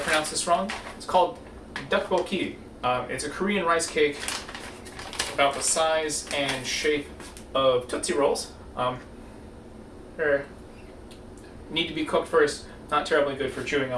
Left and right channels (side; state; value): both; identical; correlation 1.00